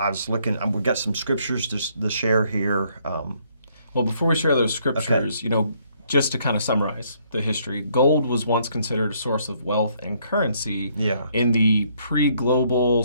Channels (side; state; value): both; inverted; correlation -0.68